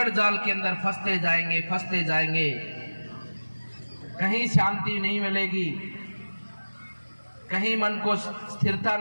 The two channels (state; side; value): inverted; both; correlation -1.00